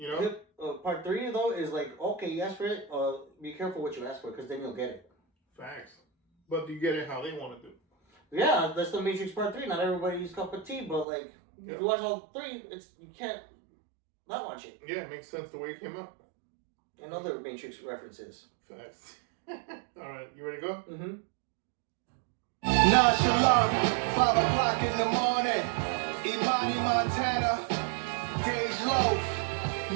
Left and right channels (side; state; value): left; drops out; at 11.1 s